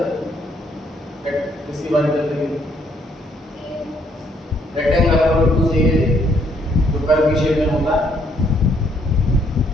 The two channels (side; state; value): both; normal; correlation 0.69